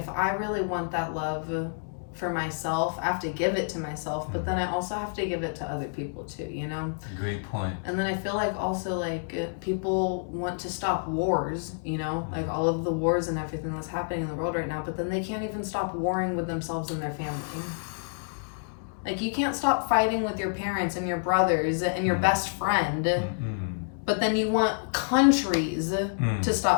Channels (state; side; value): silent; right; digital silence